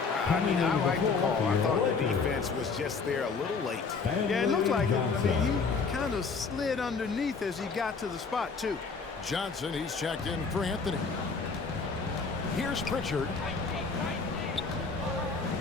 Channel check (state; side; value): quieter; right; 4.8 dB